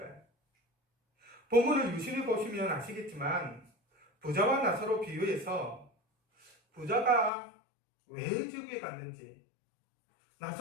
본문을 유심히 보시면 아시겠지만 부자와 나사로 비유에서 부자가 왜 지옥에 갔는지,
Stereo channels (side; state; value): right; drops out; at 7.3 s